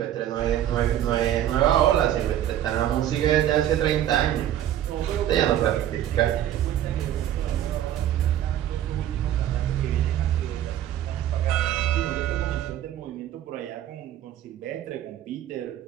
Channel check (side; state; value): left; quieter; 11.7 dB